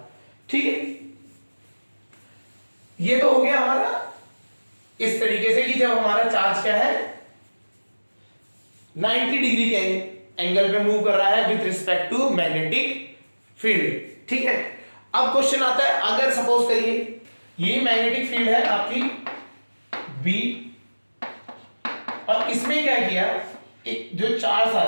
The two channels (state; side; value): inverted; both; correlation -1.00